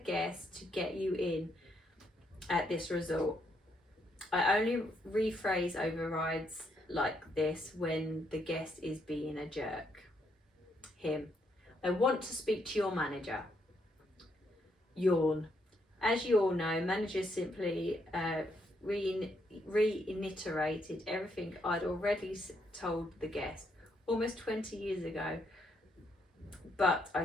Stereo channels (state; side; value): normal; both; correlation 0.75